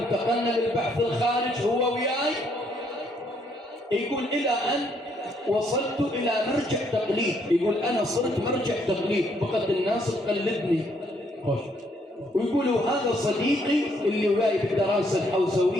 للبحث الخارج هو وياي. يقول إلى أن وصلت إلى مرجع تقليد. يقول أنا صرت مرجع تقليد، بقت الناس تقلدني. ويقولوا هذا صديقي اللي وياي بالدراسة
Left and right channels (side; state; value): both; normal; correlation 0.70